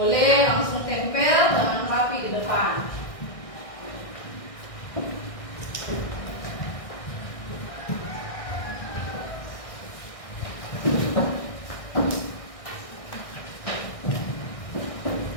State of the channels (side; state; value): right; late; 1.6 ms